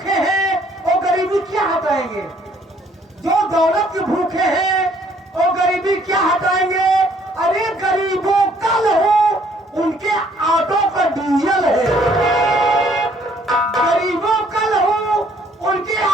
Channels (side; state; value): both; normal; correlation 0.63